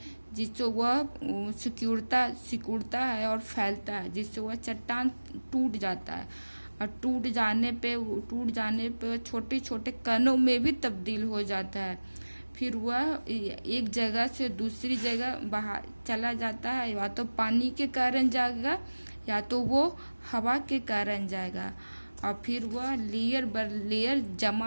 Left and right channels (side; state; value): both; inverted; correlation -1.00